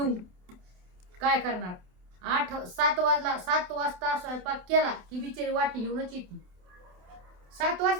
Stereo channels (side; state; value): left; late; 27 ms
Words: काय करणार, 7 वाजता स्वयंपाक केला की बिचारी वाटी घेऊनच येते. 7